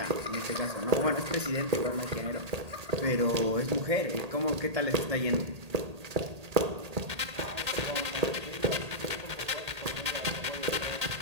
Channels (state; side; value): late; left; 1.8 ms